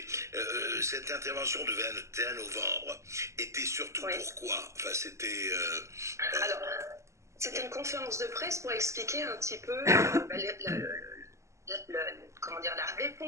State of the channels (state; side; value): late; left; 0.14 ms